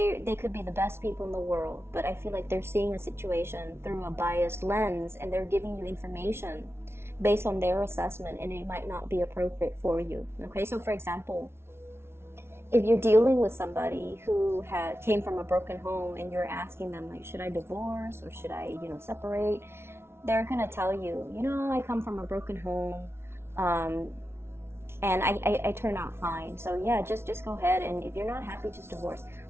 could be the best people in the world, but I feel like they're seeing a situation through a biased lens, and they're giving you information based on their assessment, and it might not be appropriate for you. Okay, so for example, if you're dealing with somebody who came from a broken home, and you're asking them, like, should I divorce or should I, you know, separate? They're gonna tell you, you know, I come from a broken home, and I turn out fine. So yeah, just go ahead, and if you're not happy, just divorce.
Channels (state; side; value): late; left; 0.12 ms